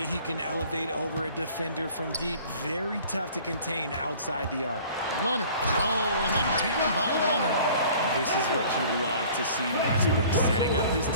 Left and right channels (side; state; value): both; inverted; correlation -0.49